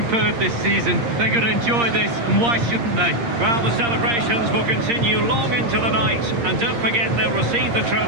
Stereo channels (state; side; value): late; left; 8.6 ms